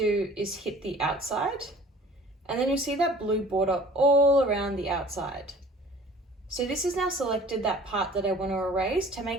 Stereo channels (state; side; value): normal; both; correlation 0.49